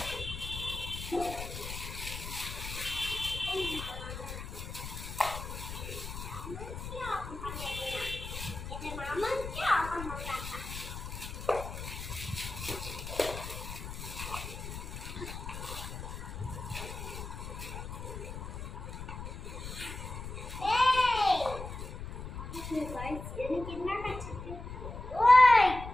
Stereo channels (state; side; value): noise; left; rumble, 8 dB below the sound